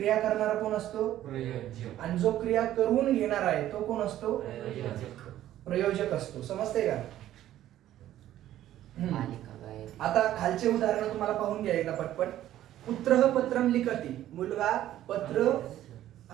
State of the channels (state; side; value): quieter; left; 12.9 dB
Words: करणारा कोण असतो? आणि जो क्रिया करून घेणार आहे तो कोण असतो? प्रयोजक असतो. समजते का? आता खालचे उदाहरण तुम्हाला पाहून घ्या एकदा पटपट. पुत्र पत्रम लिखती. मुलगा पत्र